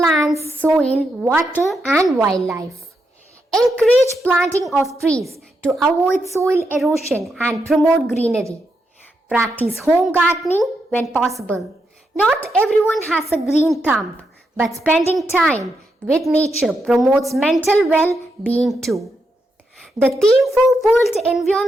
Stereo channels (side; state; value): both; normal; correlation 0.83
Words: soil, water and wildlife. Encourage planting of trees to avoid soil erosion and promote greenery. Practice home gardening when possible. Not everyone has a green thumb, but spending time with nature promotes mental well-being too. The theme for World